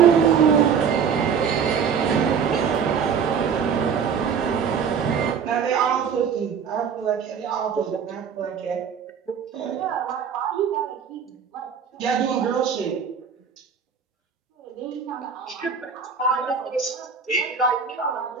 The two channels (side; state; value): left; quieter; 6.8 dB